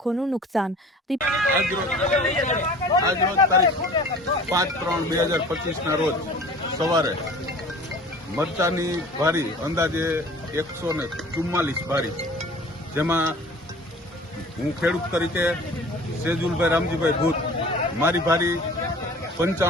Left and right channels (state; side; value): normal; both; correlation 0.45